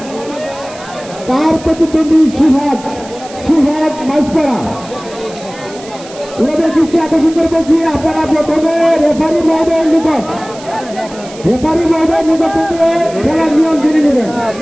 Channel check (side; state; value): right; noise; hiss, 18 dB below the sound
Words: তার প্রতিদ্বন্দ্বী সুহাগ মাঝপাড়া। ওনাদের দৃষ্টি আকর্ষণ করে বলছি, আপনারা প্রথমে রেফারি মহোদয়ের নিকট থেকে খেলার নিয়ম জেনে নেবেন,